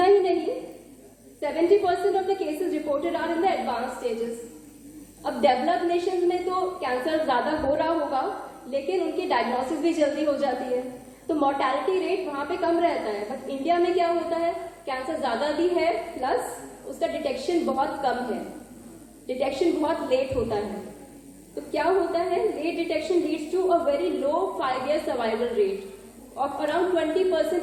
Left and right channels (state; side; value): identical; both; correlation 1.00